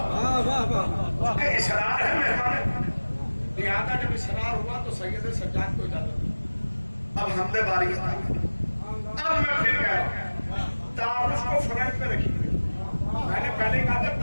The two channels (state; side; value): inverted; both; correlation -1.00